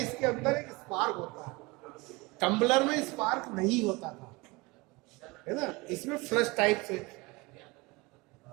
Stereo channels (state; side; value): quieter; left; 24.4 dB